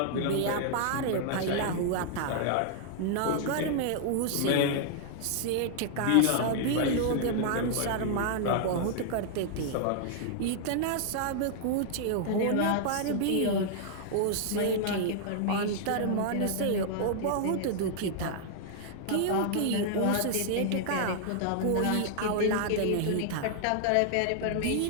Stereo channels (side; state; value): both; different; correlation -0.01